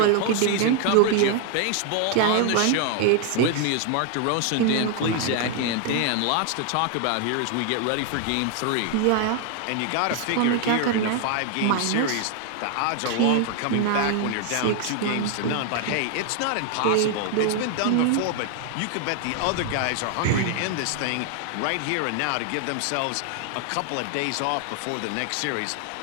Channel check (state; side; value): different; both; correlation 0.00